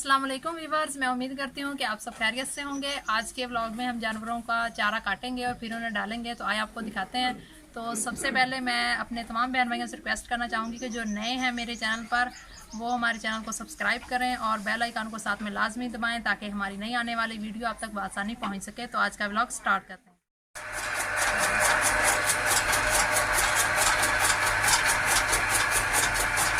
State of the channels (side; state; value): both; identical; correlation 1.00